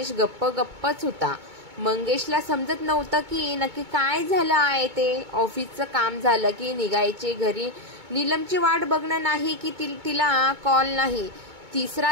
गप्पच होता। मंगेशला समजत नव्हतं की नक्की काय झालं आहे ते। ऑफिसचं काम झालं की निघायचे घरी, नीलमची वाट बघणं नाही की तिला कॉल नाही।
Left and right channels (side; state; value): left; late; 2.2 ms